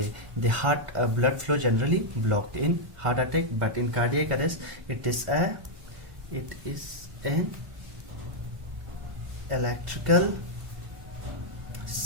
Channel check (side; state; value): left; late; 1.5 ms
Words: the heart. Blood flow generally blocked in heart attack, but in cardiac arrest it is an electrical